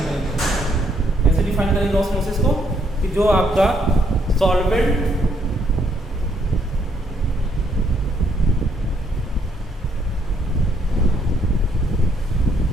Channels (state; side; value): normal; both; correlation 0.71